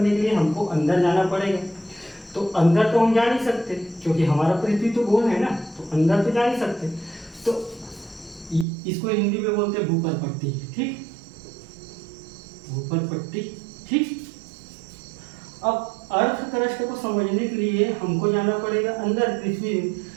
के लिए हमको अंदर जाना पड़ेगा। तो अंदर तो हम जा नहीं सकते क्योंकि हमारा पृथ्वी तो गोल है ना, तो अंदर तो जा नहीं सकते। तो इसको हिंदी में बोलते हैं भूपर पट्टी। ठीक, भूपर पट्टी। ठीक, अब अर्थ क्रस्ट को समझने के लिए हमको जाना पड़ेगा अंदर पृथ्वी में।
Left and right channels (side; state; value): left; drops out; at 8.7 s